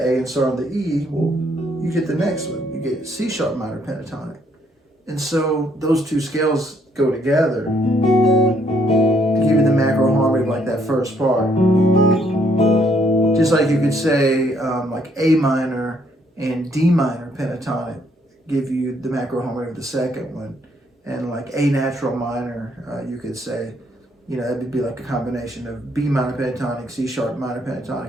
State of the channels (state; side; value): normal; both; correlation 0.69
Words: and start on the E, well, you get the next one. You get C sharp minor pentatonic. And so those 2 scales go together to give you the macro harmony like that first part. Just like you could say like A minor and D minor pentatonic give you the macro harmony of the second one. And like A natural minor, you could say, you know, that would be like a combination of B minor pentatonic, C sharp minor